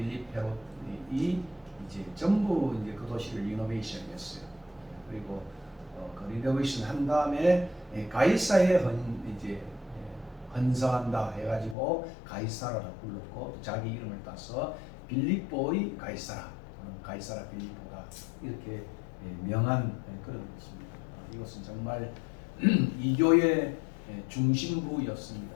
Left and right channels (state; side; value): drops out; right; at 11.8 s